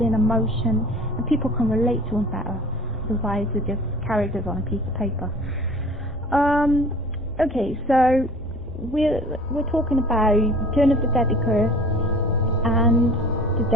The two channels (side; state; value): both; normal; correlation 0.45